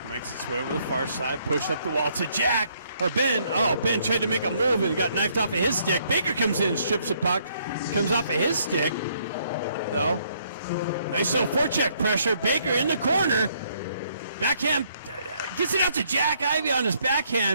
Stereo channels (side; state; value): both; inverted; correlation -0.69